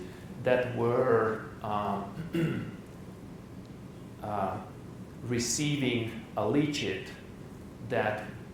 that were receiving a leachate that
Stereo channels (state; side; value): identical; both; correlation 1.00